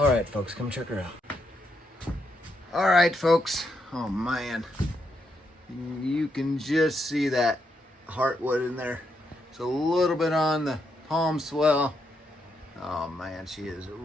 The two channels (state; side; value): normal; both; correlation 0.80